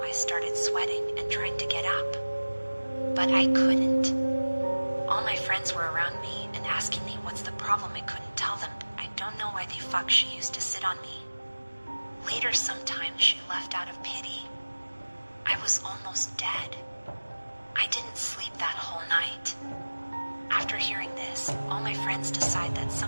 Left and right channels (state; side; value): inverted; both; correlation -1.00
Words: I started sweating and trying to get up, but I couldn't. All my friends were around me and asking me what's the problem. I couldn't tell them. I don't know why the fuck she used to sit on me. Later sometime she left out of pity. I was almost dead. I didn't sleep that whole night. After hearing this, all my friends decide that